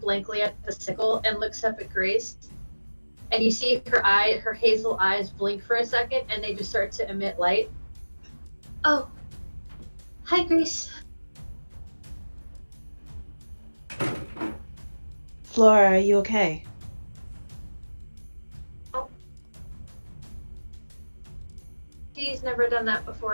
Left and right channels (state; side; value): inverted; both; correlation -1.00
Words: at the sickle and looks up at Grace. And you see her hazel eyes blink for a second and they just start to emit light. Oh. Hi, Grace. Flora, are you okay? She's never done that